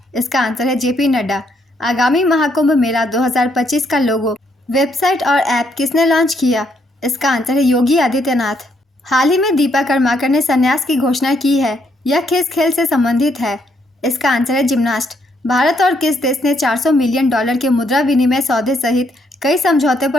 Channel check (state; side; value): normal; both; correlation 0.73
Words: इसका आंसर है JP नड्डा। आगामी महाकुंभ मेला 2025 का लोगो, वेबसाइट और ऐप किसने लॉन्च किया? इसका आंसर है योगी आदित्यनाथ। हाल ही में दीपा कर्माकर ने संन्यास की घोषणा की है। यह किस खेल से संबंधित है? इसका आंसर है जिम्नास्ट। भारत और किस देश ने $400 मिलियन के मुद्रा विनिमय सौदे सहित कई समझौते